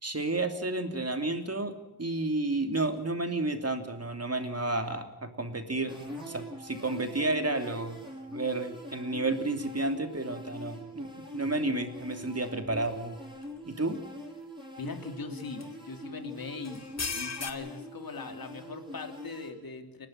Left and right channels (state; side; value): normal; both; correlation -0.01